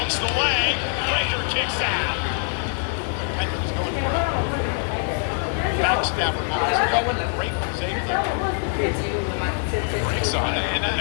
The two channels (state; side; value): silent; right; 56 dB below the other